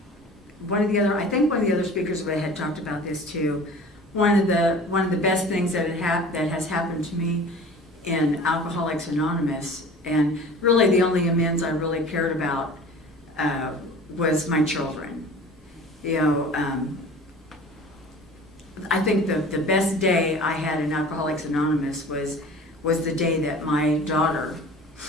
One of the other speakers had talked about this too. One of the best things that has happened to me in Alcoholics Anonymous, and really the only amends I really cared about was my children. I think the best day I had in Alcoholics Anonymous was the day that my daughter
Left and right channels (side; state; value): both; normal; correlation 0.42